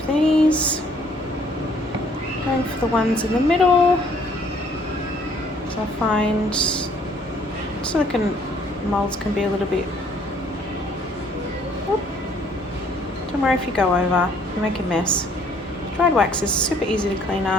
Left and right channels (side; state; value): both; normal; correlation 0.61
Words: these. Going for the ones in the middle. So I find silicone molds can be a little bit, don't worry if you go over, you make a mess. Dried wax is super easy to clean